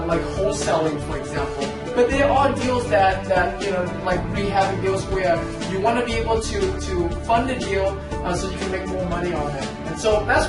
wholesaling, for example. But there are deals that like rehabbing deals where you want to be able to fund the deal so you can make more money on it. And so that's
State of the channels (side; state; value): both; identical; correlation 1.00